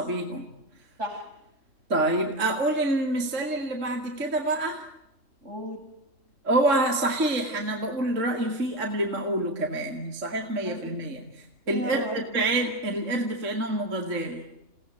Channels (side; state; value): left; late; 3.6 ms